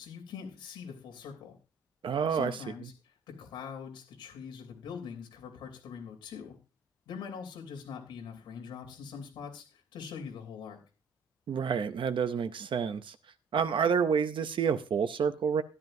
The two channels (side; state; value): left; quieter; 5.2 dB